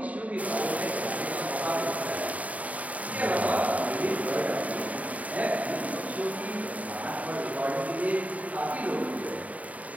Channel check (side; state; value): left; late; 0.070 ms